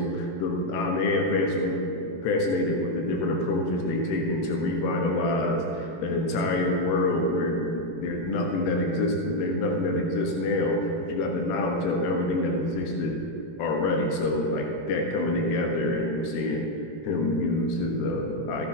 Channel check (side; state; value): right; late; 18 ms